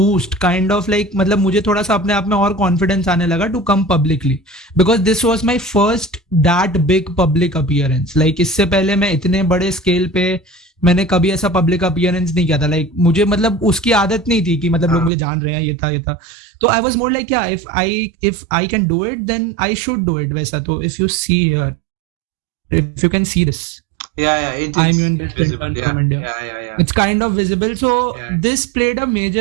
kind of like मतलब मुझे थोड़ा सा अपने आप में और confidence आने लगा to come publicly, because this was my first that big public appearance. Like इससे पहले मैं इतने बड़े scale पे मैंने कभी ऐसा public appearance नहीं किया था. Like मुझे मतलब उसकी आदत नहीं थी कि मतलब लोग मुझे जान रहे हैं, ये था. तो I was more like, yeah, if I can do it, then I should do it. वैसा. तो if you see here, if you can see this. It's visible. Yeah. It's kind of visible. So this played a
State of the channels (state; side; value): drops out; left; at 15.1 s